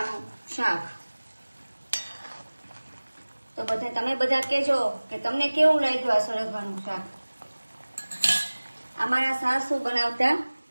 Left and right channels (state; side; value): inverted; both; correlation -1.00